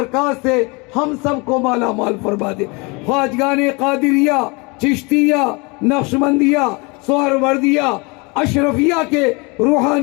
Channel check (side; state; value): right; quieter; 28.3 dB